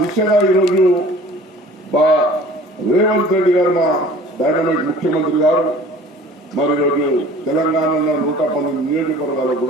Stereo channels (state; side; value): normal; both; correlation 0.47